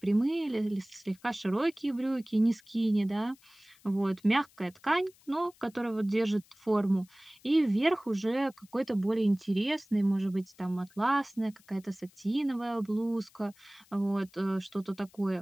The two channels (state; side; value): noise; left; hiss, 29 dB below the sound